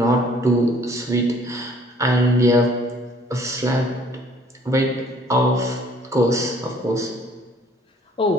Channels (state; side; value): normal; both; correlation 0.57